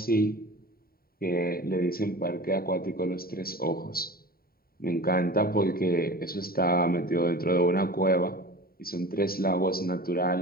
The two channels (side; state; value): right; late; 0.43 ms